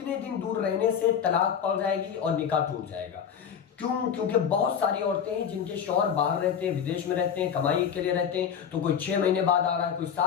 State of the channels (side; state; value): right; quieter; 7.9 dB